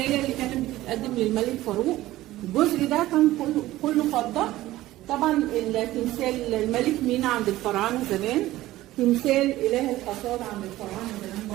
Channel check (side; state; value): left; quieter; 16.1 dB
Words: اللي كانت بتتقدم للملك فاروق. الجزء ده كان كله فضة. طبعا التمثال الملك مينا عند الفراعنه زمان، تمثال اله الحصاد عند الفراعنه زمان